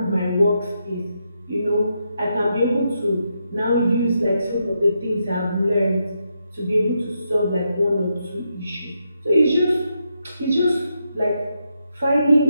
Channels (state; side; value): inverted; both; correlation -0.82